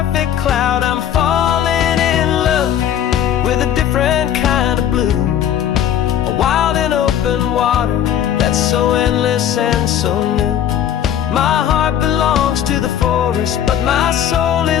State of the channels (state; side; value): quieter; right; 9.9 dB